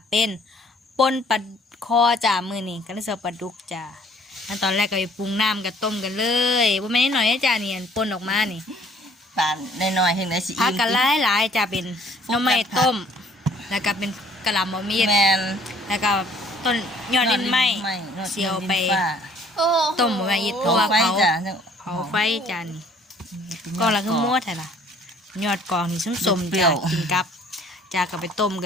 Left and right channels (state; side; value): normal; both; correlation 0.58